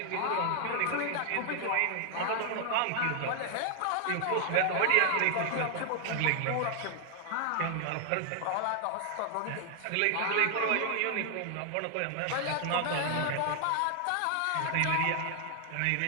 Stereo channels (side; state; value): both; different; correlation 0.00